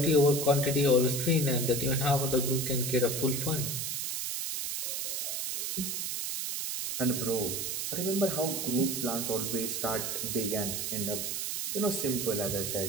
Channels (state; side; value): noise; right; hiss, 2 dB below the sound